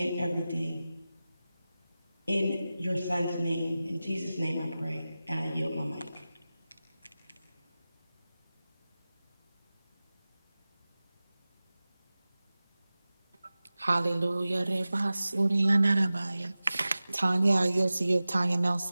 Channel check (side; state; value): both; inverted; correlation -0.96